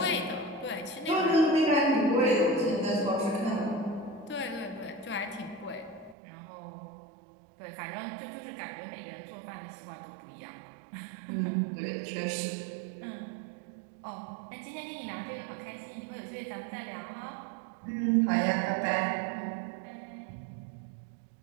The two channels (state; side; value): drops out; left; at 6.2 s